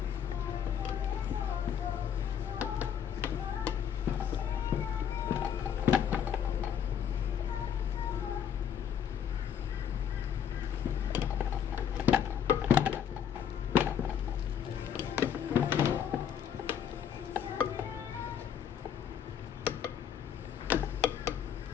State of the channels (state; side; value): quieter; right; 8.6 dB